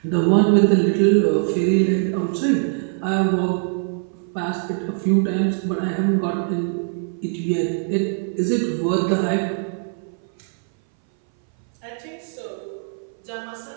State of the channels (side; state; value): left; silent; 61 dB below the other